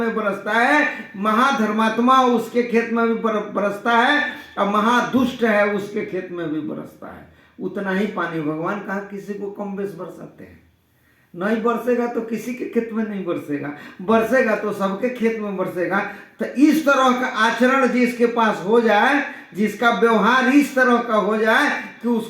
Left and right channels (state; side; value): identical; both; correlation 1.00